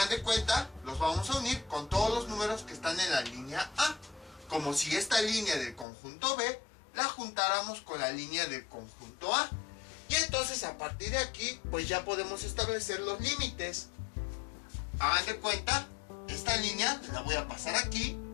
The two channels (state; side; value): drops out; right; at 5.9 s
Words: de cuenta, los vamos a unir con todos los números que están en la línea A, como si esta línea del conjunto B la juntáramos con la línea del conjunto A. Y entonces a partir de aquí, pues ya podemos establecer los límites. Hagan de cuenta, esta línea la voy a pasar aquí.